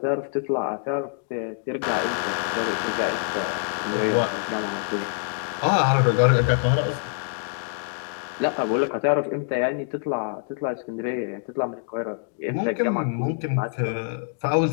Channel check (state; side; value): silent; right; digital silence